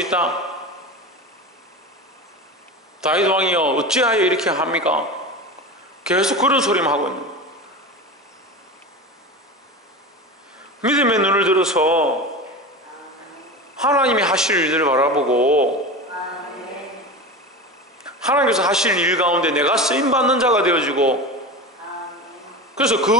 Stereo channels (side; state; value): both; normal; correlation 0.27